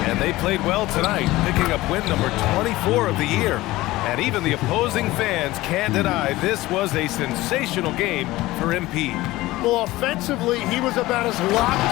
And they played well tonight, picking up win number 24 of the year. And even the opposing fans can't deny this was a sensational game for MP. Well, offensively, he was about as locked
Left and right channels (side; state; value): right; quieter; 18.1 dB